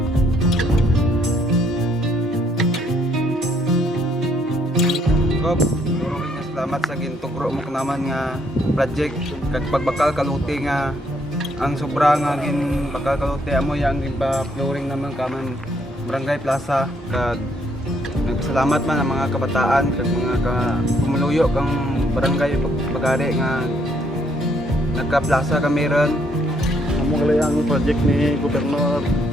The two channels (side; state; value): both; normal; correlation 0.70